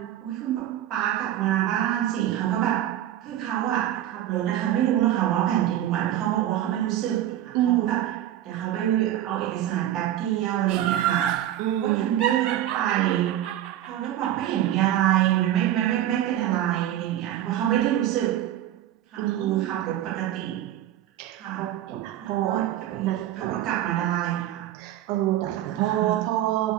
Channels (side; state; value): left; quieter; 12.4 dB